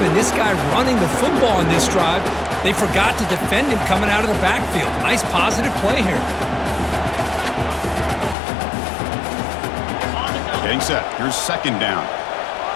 in this guy running the football in this drive, they forgot to defend him coming out of the backfield. Nice positive play here. Getting set. Here's second down.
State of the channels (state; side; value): drops out; right; at 8.3 s